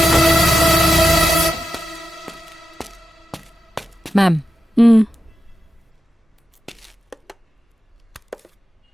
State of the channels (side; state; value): both; normal; correlation 0.89